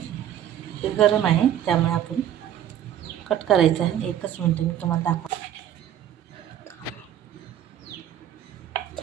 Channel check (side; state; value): left; quieter; 10.7 dB